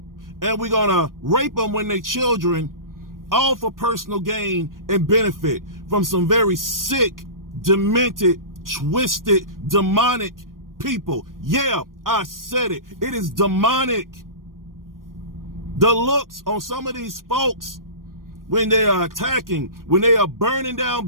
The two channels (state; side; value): late; left; 0.91 ms